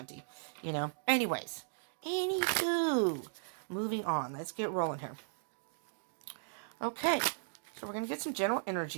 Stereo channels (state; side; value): silent; left; digital silence